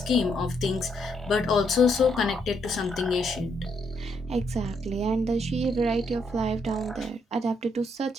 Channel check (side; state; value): both; normal; correlation 0.75